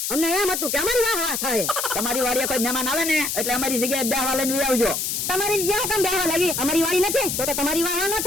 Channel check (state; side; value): noise; left; hiss, 1 dB below the sound